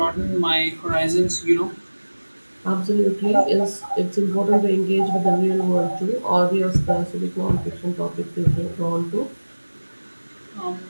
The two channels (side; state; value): both; inverted; correlation -1.00